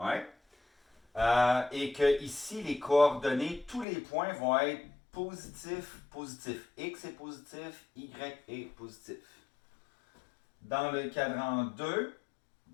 Et que ici, les coordonnées, tous les points vont être positifs, positifs. X est positif, Y est positif. Dans le cadran 2,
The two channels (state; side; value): drops out; right; at 3.9 s